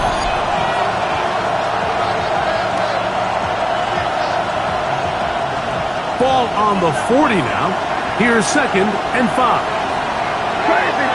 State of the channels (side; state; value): both; identical; correlation 1.00